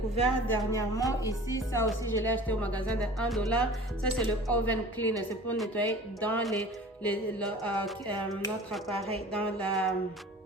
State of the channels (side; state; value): both; normal; correlation 0.42